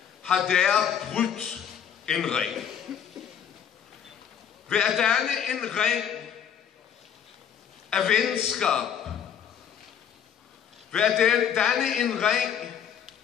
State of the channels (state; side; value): quieter; right; 8.5 dB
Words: har der brudt en ring. Ved at danne en ring af venskab, ved at danne en ring